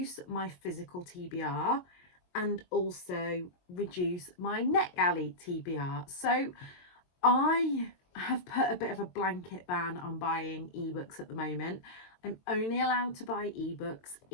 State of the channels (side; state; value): right; late; 22 ms